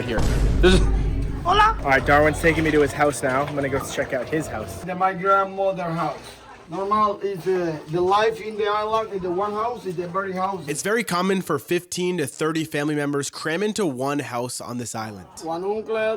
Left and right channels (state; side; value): identical; both; correlation 1.00